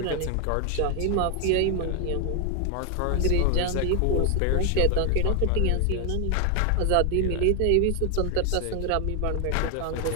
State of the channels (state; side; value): different; both; correlation 0.01